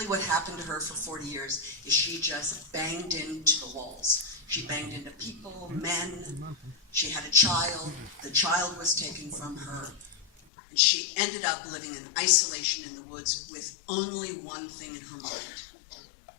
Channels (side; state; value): right; drops out; at 10.3 s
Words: what happened to her for 40 years is she just banged into the walls. She banged into people, men. She had a child. The child was taken from her. And she ended up living in isolation in the woods with only one thing in her mind,